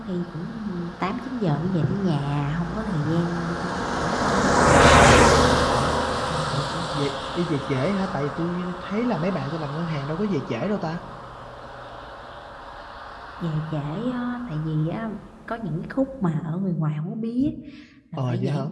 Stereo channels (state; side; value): identical; both; correlation 1.00